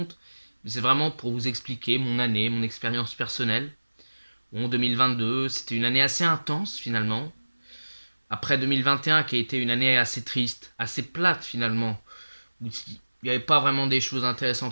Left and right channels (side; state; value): both; inverted; correlation -1.00